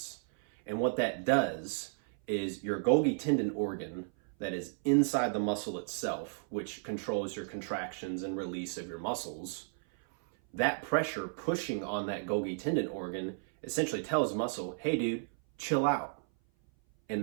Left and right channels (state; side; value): silent; left; 55 dB below the other